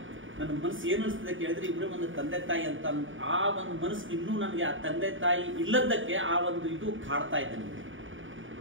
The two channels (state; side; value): late; left; 0.57 ms